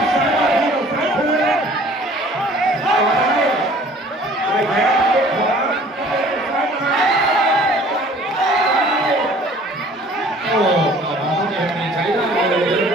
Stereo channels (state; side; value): normal; both; correlation 0.52